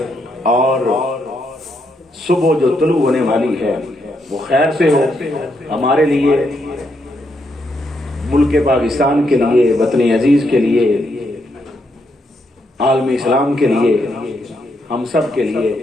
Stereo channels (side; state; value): both; normal; correlation 0.78